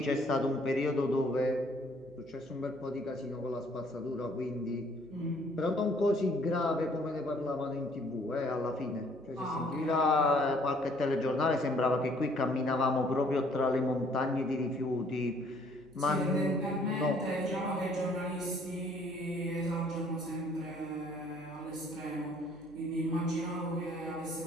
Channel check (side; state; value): right; noise; hum, 27 dB below the sound